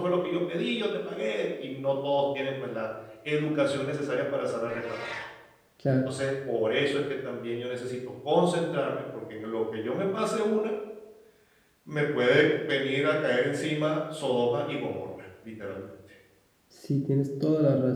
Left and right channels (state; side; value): identical; both; correlation 1.00